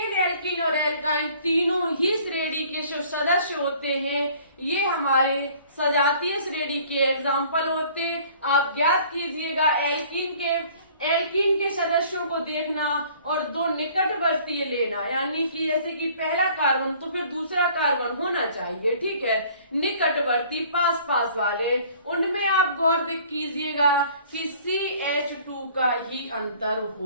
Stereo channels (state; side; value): inverted; both; correlation -0.53